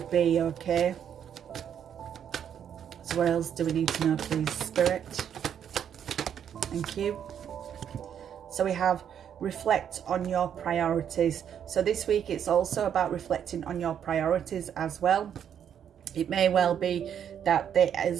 be, okay. So what else do we need to know, please, Spirit? Thank you. So we have reflect on your priorities. So this week it's also about reflecting on your priorities as well. It may well be that there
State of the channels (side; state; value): left; quieter; 8.9 dB